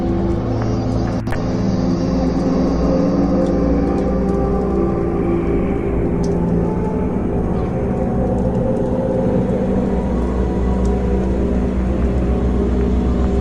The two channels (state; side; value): identical; both; correlation 1.00